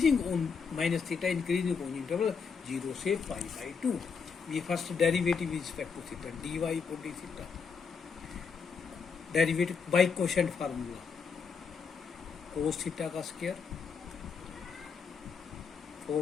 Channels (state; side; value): quieter; right; 5.7 dB